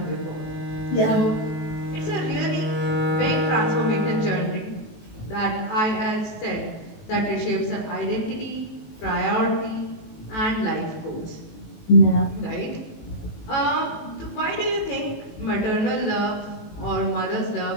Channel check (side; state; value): right; late; 19 ms